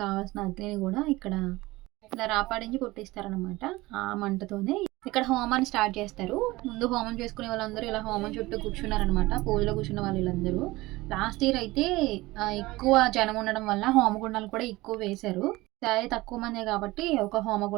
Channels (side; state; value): left; quieter; 19.9 dB